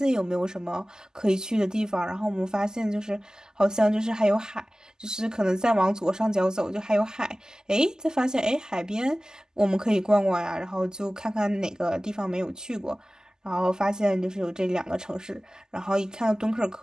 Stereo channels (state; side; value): normal; both; correlation 0.97